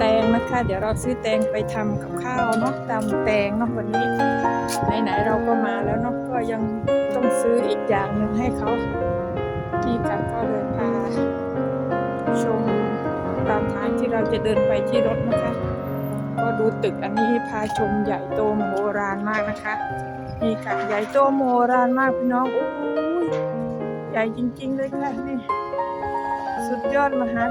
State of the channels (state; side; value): identical; both; correlation 1.00